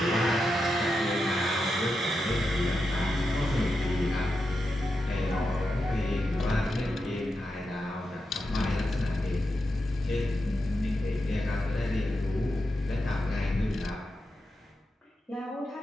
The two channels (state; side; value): normal; both; correlation 0.87